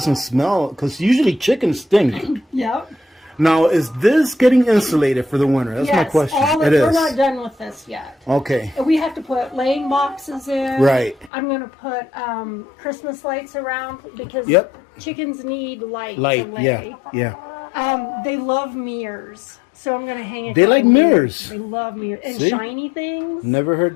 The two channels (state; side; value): drops out; right; at 11.3 s